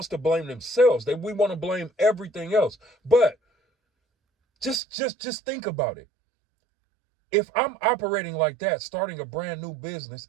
to blame themselves. We want to blame everything else. But just think about it. If I'm operating like that, starting a brand new business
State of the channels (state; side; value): drops out; left; at 4.8 s